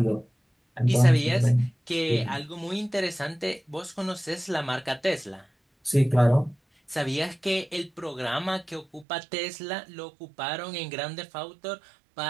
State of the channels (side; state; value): left; drops out; at 9.1 s